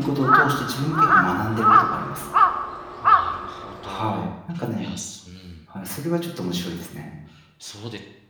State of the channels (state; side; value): identical; both; correlation 1.00